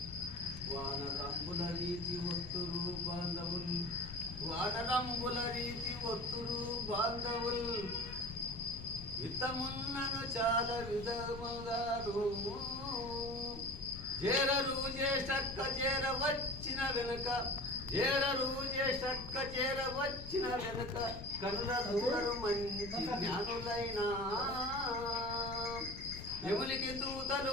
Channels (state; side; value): noise; left; rumble, 11 dB below the sound